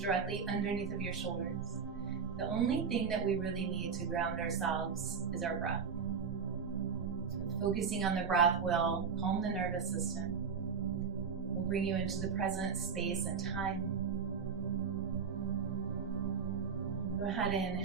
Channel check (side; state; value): left; quieter; 6.1 dB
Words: underneath of your shoulders. The only thing that we really need to ground ourselves is our breath. Focusing on the breath will calm the nervous system, will bring you into the present space and time. Go ahead